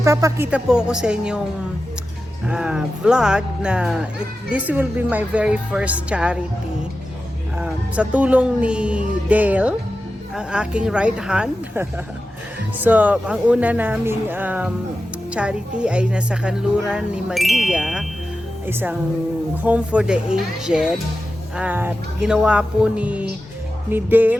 po ako sa inyong vlog na this will be my very first charity. Sa tulong ni Dale, ang aking right hand. So, ang una naming charity ay nasa kanluran ni Maria, isang home for the aged. At ginawa po ni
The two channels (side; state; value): both; normal; correlation 0.93